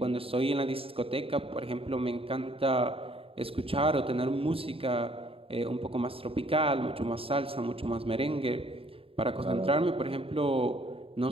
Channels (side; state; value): left; late; 0.27 ms